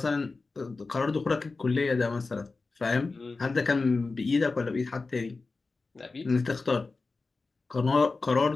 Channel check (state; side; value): quieter; right; 3.9 dB